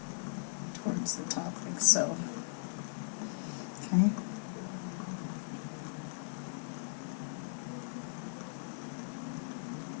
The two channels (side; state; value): right; silent; digital silence